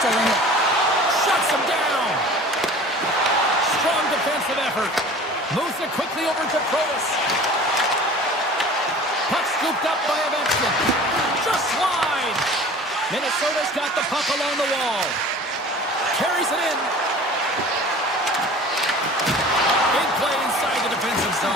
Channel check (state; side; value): normal; both; correlation 0.43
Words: still in it. Shuts him down. Strong defensive effort. Moves it quickly over to Provis. Puck scooped up by Ovechkin. Just wide. Minnesota's got the puck along the wall. Carries it in. Big play inside the defensive